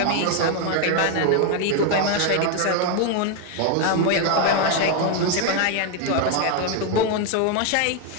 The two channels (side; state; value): both; different; correlation 0.01